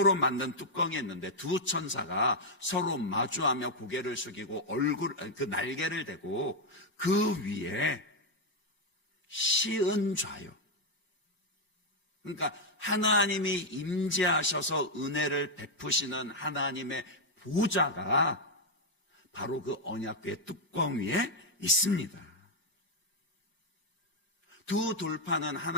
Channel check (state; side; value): late; right; 5.5 ms